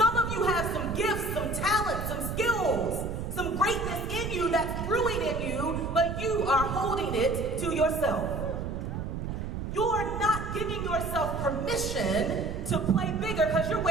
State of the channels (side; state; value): right; noise; rumble, 5 dB below the sound